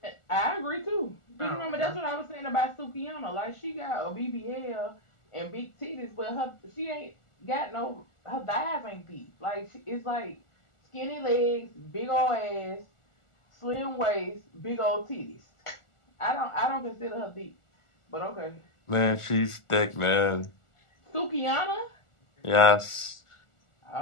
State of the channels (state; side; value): late; right; 1.4 ms